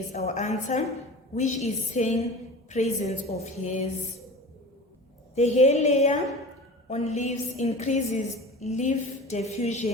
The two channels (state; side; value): normal; both; correlation 0.35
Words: our answer, which is saying presence of hairs. The hair layer on leaves increases leaf